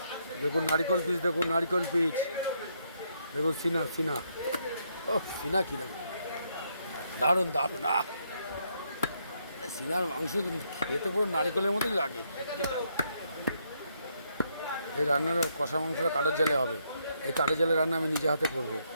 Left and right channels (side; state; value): both; inverted; correlation -0.75